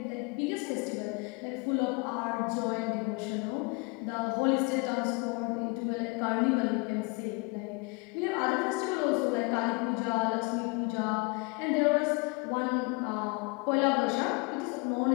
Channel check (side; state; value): right; quieter; 30.1 dB